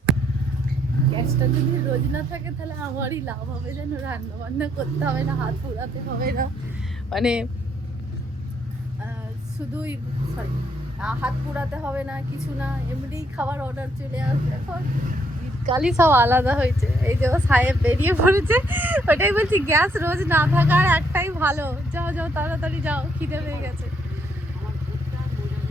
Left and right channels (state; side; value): normal; both; correlation 0.72